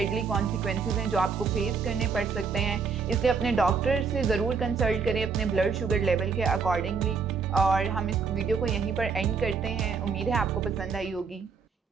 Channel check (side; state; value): left; quieter; 5.4 dB